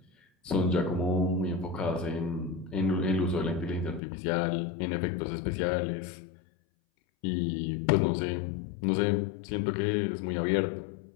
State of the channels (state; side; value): drops out; right; at 4.0 s